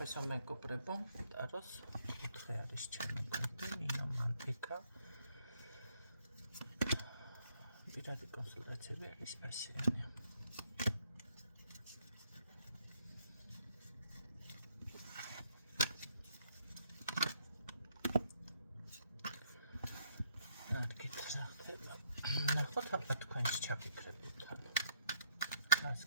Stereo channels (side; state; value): both; inverted; correlation -0.71